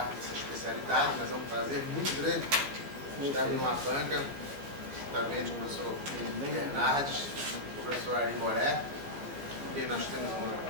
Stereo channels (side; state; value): left; late; 14 ms